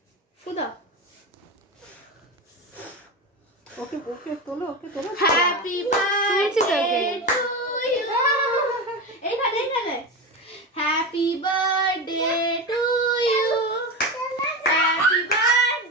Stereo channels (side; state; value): both; normal; correlation 0.21